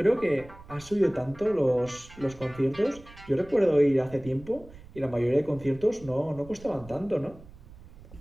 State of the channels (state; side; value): noise; right; rumble, 20 dB below the sound